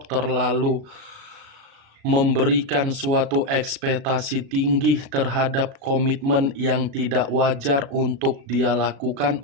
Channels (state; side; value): late; left; 36 ms